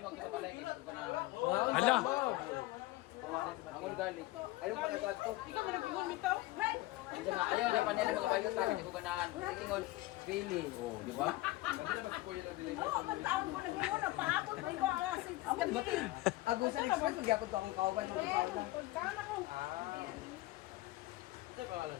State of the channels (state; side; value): quieter; right; 18.8 dB